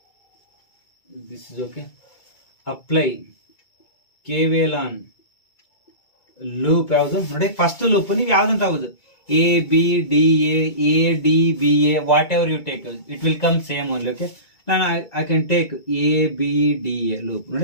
This is okay. Apply KVL on loop ಯಾವುದು ನೋಡಿ. First loop ನೀವು ಯಾವ್ದಂತ ಆಗುದು, A B D A D B A, whatever you take, it will come same only. Okay, now I can take A B D A loop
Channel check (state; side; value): late; right; 2.3 ms